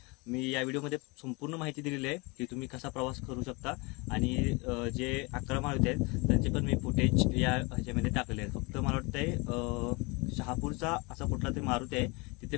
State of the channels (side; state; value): right; quieter; 27.8 dB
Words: मी या व्हिडिओमध्ये संपूर्ण माहिती दिलेली आहे की तुम्ही कसा प्रवास करू शकता आणि जे 11 मारुती आहेत त्यांचे पण मी फुटेज या ह्याच्यामध्ये टाकले आहेत। फक्त मला वाटतंय शहापूरचा असा कुठला तरी मारुती आहे तिथे